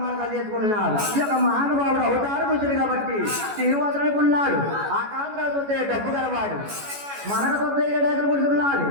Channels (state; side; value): late; left; 14 ms